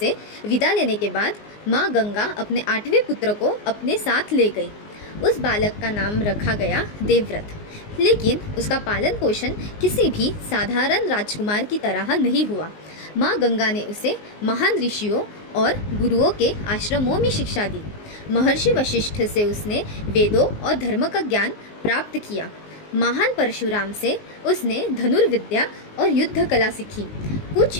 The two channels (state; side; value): late; right; 19 ms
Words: विदा लेने के बाद माँ गंगा अपने 8वें पुत्र को अपने साथ ले गई। उस बालक का नाम रखा गया देवव्रत, लेकिन उसका पालन पोषण किसी भी साधारण राजकुमार की तरह नहीं हुआ। माँ गंगा ने उसे महान ऋषियों और गुरुओं के आश्रमों में शिक्षा दी। महर्षि वशिष्ठ से उसने वेदों और धर्म का ज्ञान प्राप्त किया। महान परशुराम से उसने धनुर्विद्या और युद्ध कला सीखी। कुछ